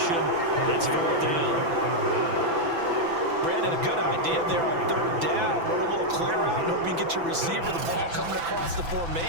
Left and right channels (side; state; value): left; late; 6.0 ms